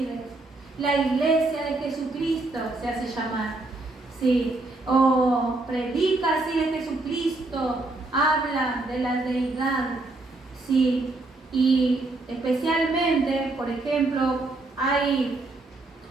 La iglesia de Jesucristo se hace llamar. Sí. O predica así de Jesucristo, habla de la deidad. Sí. Y especialmente, por ejemplo, hay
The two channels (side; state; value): left; quieter; 3.1 dB